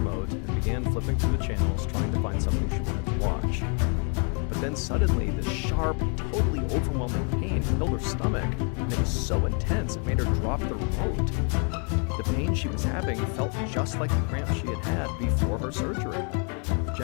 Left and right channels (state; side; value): quieter; right; 39.0 dB